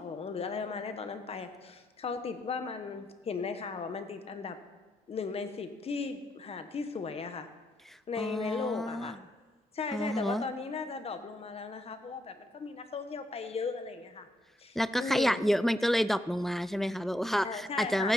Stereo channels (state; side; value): normal; both; correlation 0.78